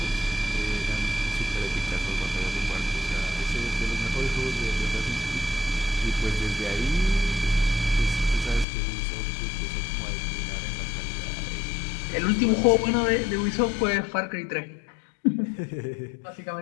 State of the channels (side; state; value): right; drops out; at 8.7 s